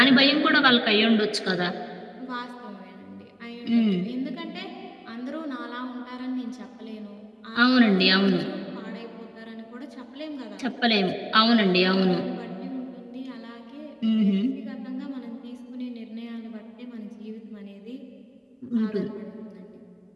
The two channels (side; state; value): both; identical; correlation 1.00